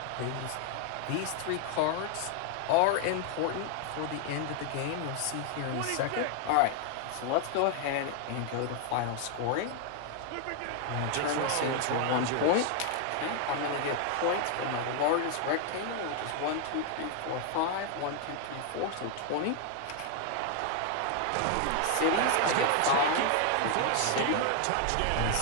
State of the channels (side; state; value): both; different; correlation 0.00